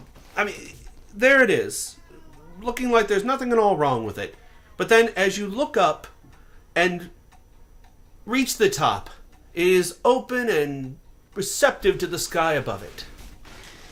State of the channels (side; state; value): both; identical; correlation 1.00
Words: I mean, there it is, looking like there's nothing at all wrong with it. But then as you look up and reach the top, it is open and receptive to the sky above it.